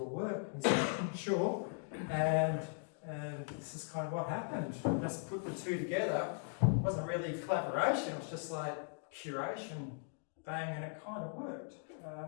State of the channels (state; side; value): silent; right; 52 dB below the other